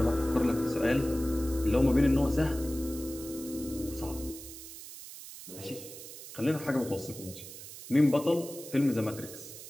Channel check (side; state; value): right; noise; hiss, 13 dB below the sound